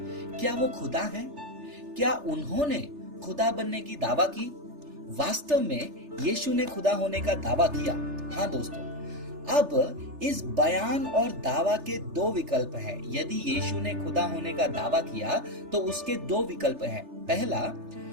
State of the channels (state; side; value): late; left; 3.3 ms